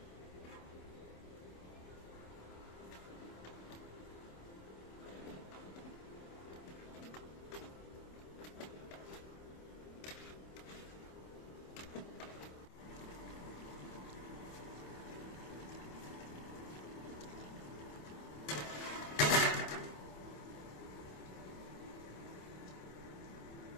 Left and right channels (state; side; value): late; right; 27 ms